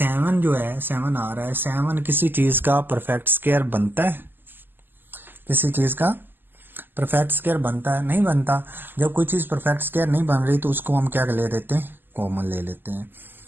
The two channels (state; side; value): late; left; 0.093 ms